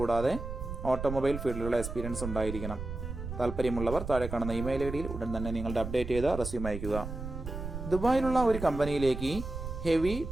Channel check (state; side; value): noise; right; rumble, 7 dB below the sound